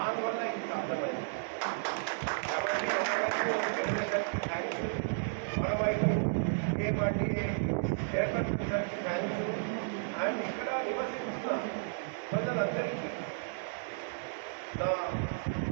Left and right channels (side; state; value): left; silent; digital silence